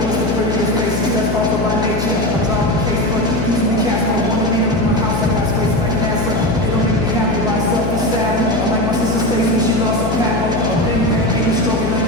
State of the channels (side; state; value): left; noise; hum, 2 dB below the sound